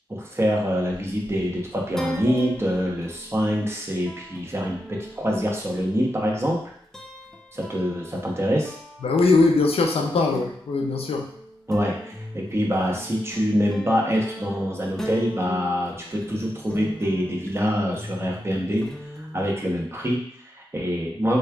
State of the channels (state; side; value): normal; both; correlation 0.85